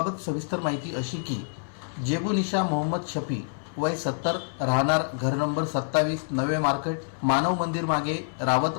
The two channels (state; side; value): silent; right; 60 dB below the other